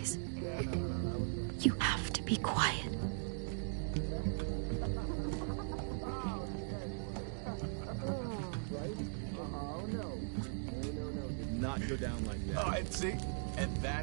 You have to be quiet. Not go down like that. Oh, and see? And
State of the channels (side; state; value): left; silent; digital silence